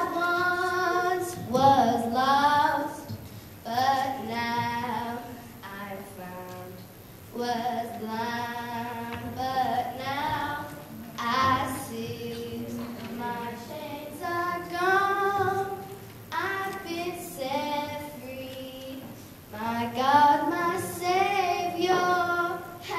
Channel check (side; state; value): both; identical; correlation 1.00